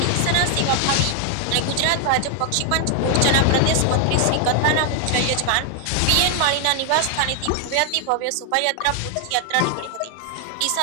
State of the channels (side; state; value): both; different; correlation 0.00